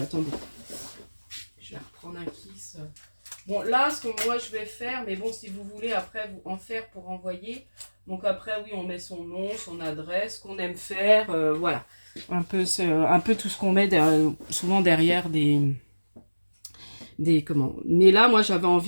Je vais reprendre un kiss. Bon, là, ce que moi je vais faire, mais bon, si vous voulez après vous en faire pour envoyer, donc après, oui, on met son nom, son adresse, qu'on aime faire, voilà. Un peu tout ce qu'on met souvent derrière comment. Mais là, moi, j'avais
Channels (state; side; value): inverted; both; correlation -1.00